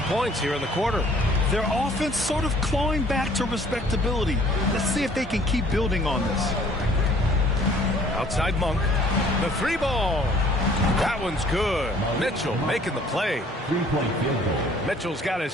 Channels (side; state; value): both; normal; correlation 0.56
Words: points here in the quarter. Their offense sort of clawing back to respectability. Let's see if they can keep building on this. Outside Monk. The 3-ball. That one's good. Mitchell making the play. 3-point field goal. Mitchell's got